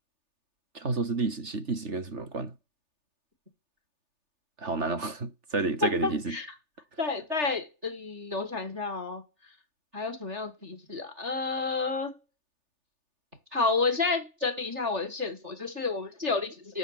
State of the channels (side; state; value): left; late; 3.4 ms